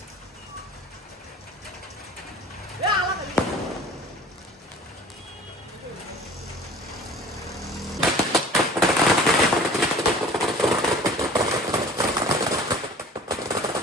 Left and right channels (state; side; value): normal; both; correlation 0.44